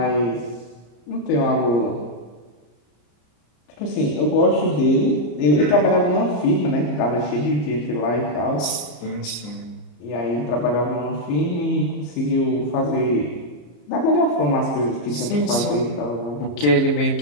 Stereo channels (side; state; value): right; late; 33 ms